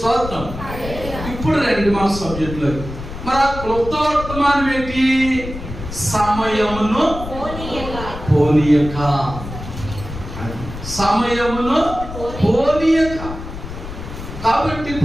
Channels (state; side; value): noise; left; rumble, 10 dB below the sound